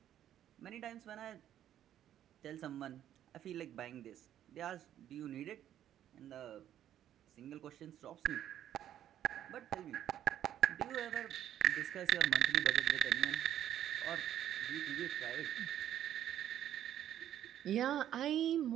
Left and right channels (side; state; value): left; quieter; 11.1 dB